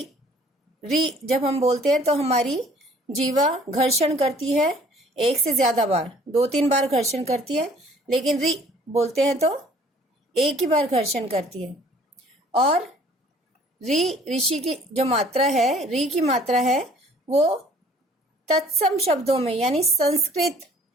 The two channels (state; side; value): normal; both; correlation 0.55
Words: री जब हम बोलते हैं तो हमारी जीवा घर्षण करती है एक से ज्यादा बार, 2-3 बार घर्षण करती है। लेकिन री बोलते हैं तो एक ही बार घर्षण करती है। और री ऋषि की जो मात्रा है, री की मात्रा है, वो तत्सम शब्दों में यानी संस्कृत